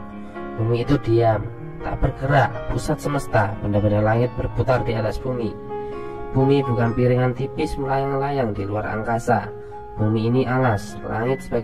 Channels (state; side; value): identical; both; correlation 1.00